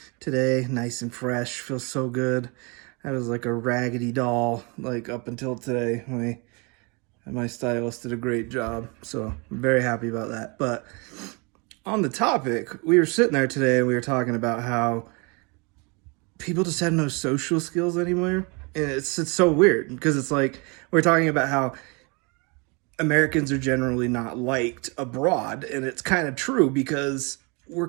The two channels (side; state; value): left; quieter; 30.6 dB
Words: today, nice and fresh. Feels so good. I was like a raggedy doll like up until today. My stylist did a great job, so I'm very happy about that. But on the topic, we were sitting there today and we were talking about how people just have no social skills anymore. And it's so weird because it's like we're talking about how Americans are generally not liked abroad, and it's kind of true because we're